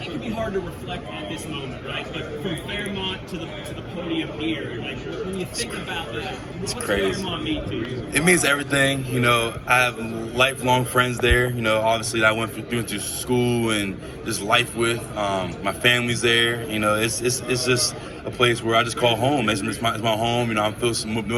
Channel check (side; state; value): both; identical; correlation 1.00